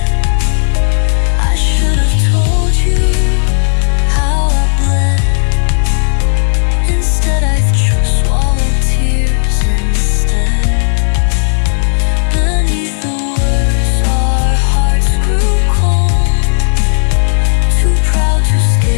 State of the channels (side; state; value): right; silent; digital silence